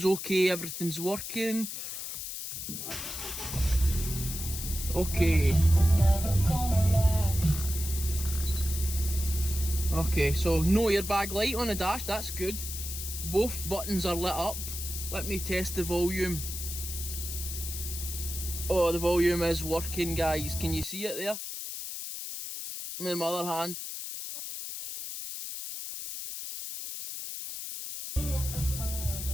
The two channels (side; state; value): left; noise; hiss, 7 dB below the sound